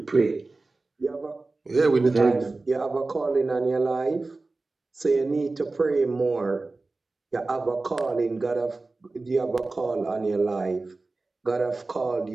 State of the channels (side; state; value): left; quieter; 3.4 dB